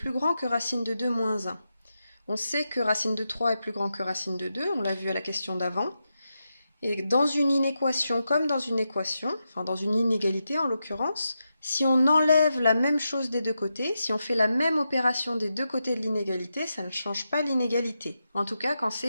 grand que racine de 2 moins 1. On sait que racine de 3 est plus grand que racine de 2, on l'a vu à la question d'avant. Et dans une inéquation comme dans une équation, enfin dans une inégalité en l'occurrence, si on enlève la même chose des deux côtés, si on fait la même opération des deux côtés de l'inégalité, ça ne change pas l'inégalité. En tout cas quand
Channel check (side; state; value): both; inverted; correlation -0.87